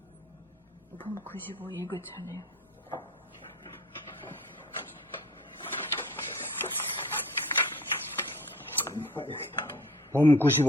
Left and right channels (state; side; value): normal; both; correlation 0.46